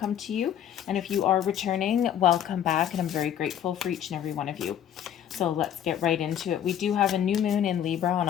to you. And if you are returning, welcome back, and I'm very grateful for each and every one of you. So let's get right into it. We do have a new moon in Libra on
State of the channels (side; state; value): right; quieter; 10.0 dB